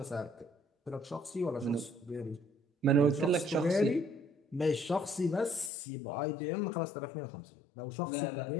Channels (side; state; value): right; drops out; at 5.7 s